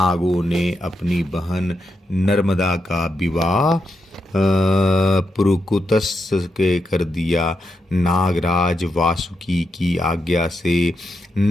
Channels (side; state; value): both; normal; correlation 0.84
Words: ने अपनी बहन नर्मदा का विवाह पुरुकुतस के कर दिया। नागराज वासुकी की आज्ञा से